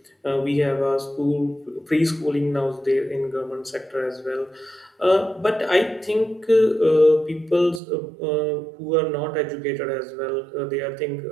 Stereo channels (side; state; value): left; drops out; at 7.8 s